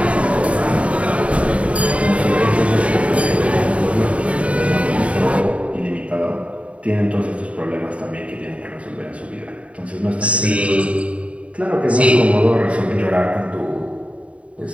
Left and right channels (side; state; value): left; late; 0.064 ms